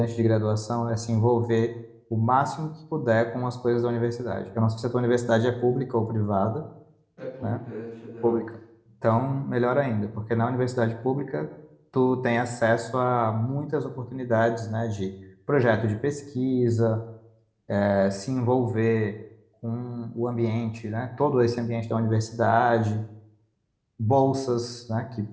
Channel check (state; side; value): identical; both; correlation 1.00